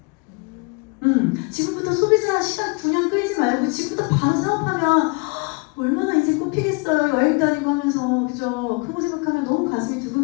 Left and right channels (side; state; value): right; quieter; 31.3 dB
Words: 지금부터 소비자 시간 9년 끌지 말고 지금부터 바로 사업하면 얼마나 인생 꽃피겠어요. 여행 다니고 하면서 그죠? 그런 거 생각하면 너무 가슴이